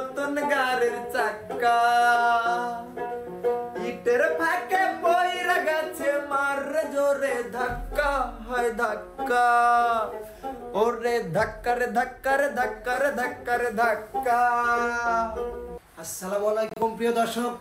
গাড়ির চাক্কা ইটের ফাঁকে পইরা গেছে, মার জোরে ধাক্কা হয় ধাক্কা, ওরে ধাক্কা রে ধাক্কা রে ধাক্কা রে ধাক্কা রে ধাক্কা। আসসালামু আলাইকুম প্রিয় দর্শক,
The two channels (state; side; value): identical; both; correlation 1.00